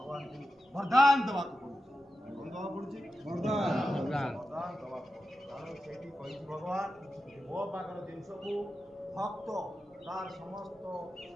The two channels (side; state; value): both; normal; correlation 0.91